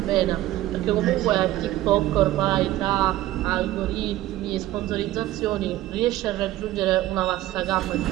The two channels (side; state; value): left; quieter; 15.3 dB